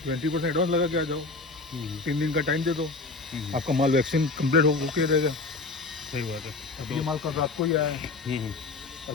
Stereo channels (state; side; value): quieter; right; 3.7 dB